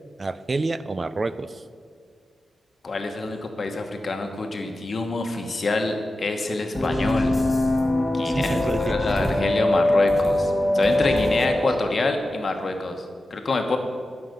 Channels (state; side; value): normal; both; correlation 0.93